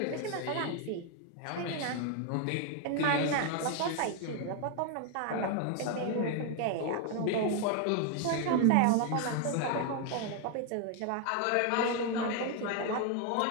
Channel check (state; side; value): different; both; correlation 0.01